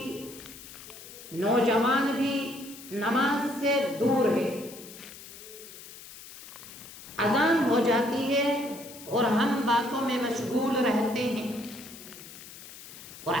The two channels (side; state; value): left; noise; hiss, 16 dB below the sound